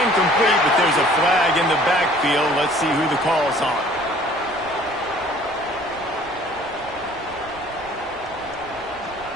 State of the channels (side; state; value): right; noise; rumble, 22 dB below the sound